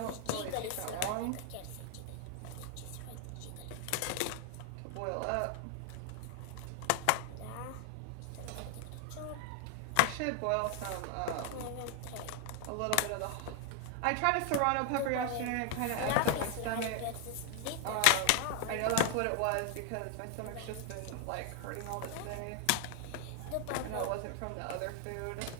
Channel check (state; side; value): different; both; correlation 0.00